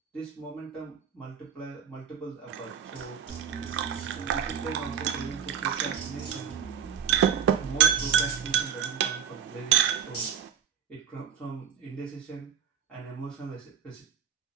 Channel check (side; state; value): left; quieter; 8.2 dB